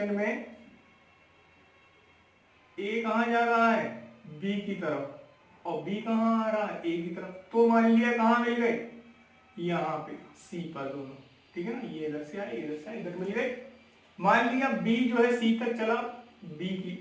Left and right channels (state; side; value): identical; both; correlation 1.00